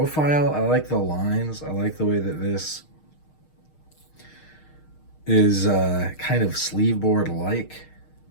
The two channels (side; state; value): right; late; 6.5 ms